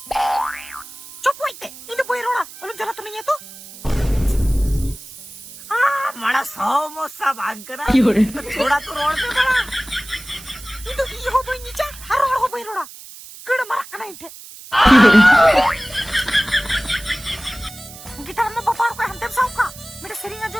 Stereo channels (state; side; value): noise; right; hiss, 16 dB below the sound